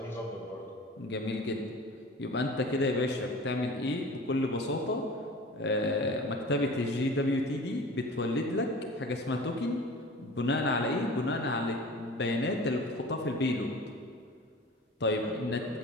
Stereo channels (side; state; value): both; normal; correlation 0.39